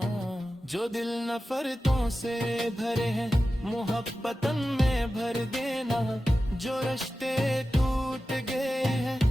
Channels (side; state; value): both; normal; correlation 0.94